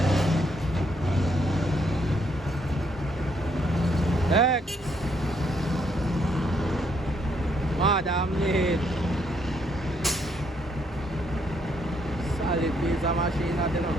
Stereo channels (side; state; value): both; normal; correlation 0.72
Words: Madam Lane. Solid piece of machine, you know.